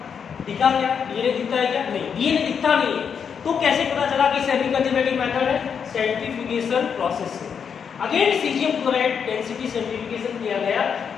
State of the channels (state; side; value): quieter; right; 7.0 dB